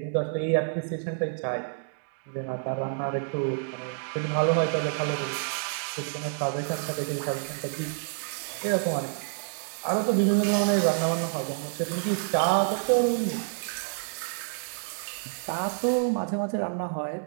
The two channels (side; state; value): left; silent; digital silence